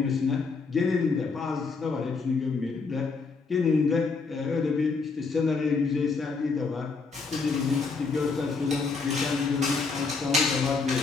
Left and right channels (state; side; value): quieter; right; 4.5 dB